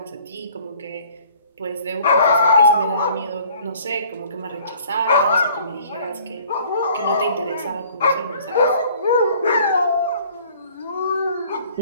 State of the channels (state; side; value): inverted; both; correlation -0.54